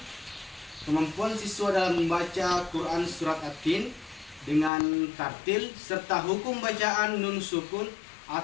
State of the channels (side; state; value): right; drops out; at 4.7 s